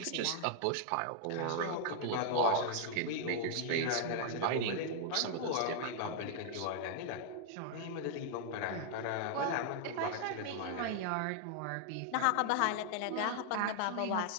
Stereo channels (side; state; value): both; different; correlation 0.00